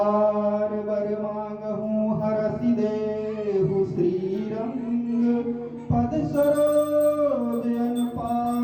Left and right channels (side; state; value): both; identical; correlation 1.00